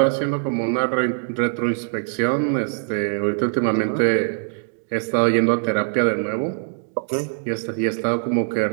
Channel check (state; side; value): silent; left; digital silence